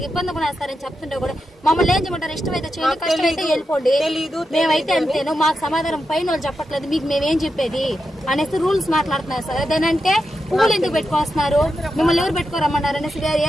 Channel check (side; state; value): both; normal; correlation 0.87